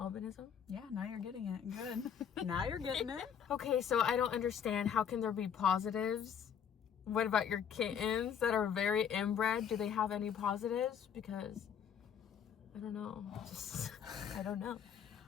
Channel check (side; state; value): right; quieter; 8.0 dB